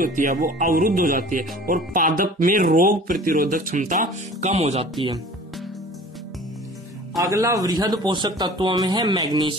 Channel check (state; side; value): normal; both; correlation 0.44